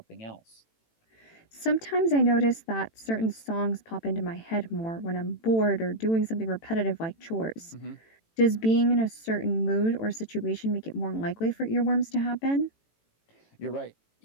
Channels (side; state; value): right; late; 18 ms